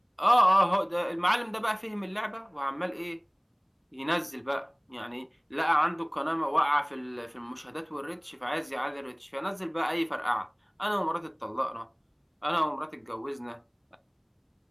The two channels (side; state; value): both; identical; correlation 1.00